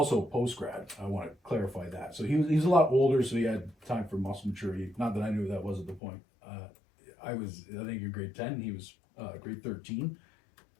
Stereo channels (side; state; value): right; drops out; at 6.0 s